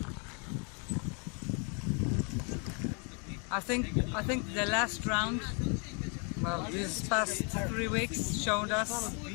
I think the last round, well, these past 3 weeks showed us.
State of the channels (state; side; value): quieter; right; 36.8 dB